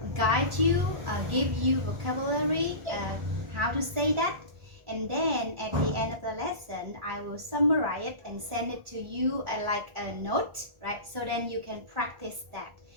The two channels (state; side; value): late; left; 1.3 ms